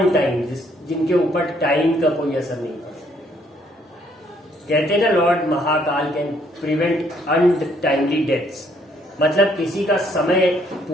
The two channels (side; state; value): both; normal; correlation 0.67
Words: time, जिनके ऊपर टाइम का कोई असर नहीं पड़ता। कहते हैं ना, Lord Mahakal can prevent untimely deaths, मतलब किसी का समय